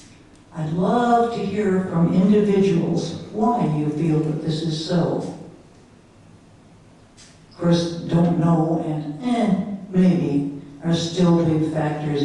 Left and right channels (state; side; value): identical; both; correlation 1.00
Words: I'd love to hear from individuals why you feel that this is so. Of course, don't know and maybe are still big factors